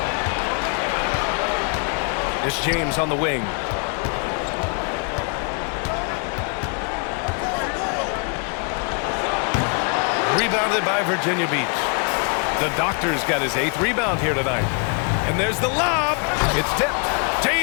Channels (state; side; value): quieter; right; 37.6 dB